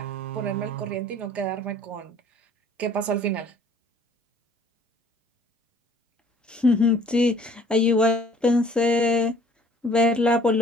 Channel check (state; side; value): normal; both; correlation 0.55